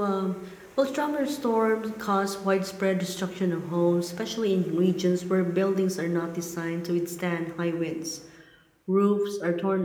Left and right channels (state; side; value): identical; both; correlation 1.00